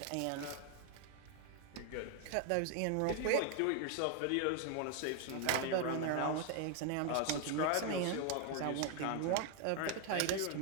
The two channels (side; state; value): both; different; correlation 0.00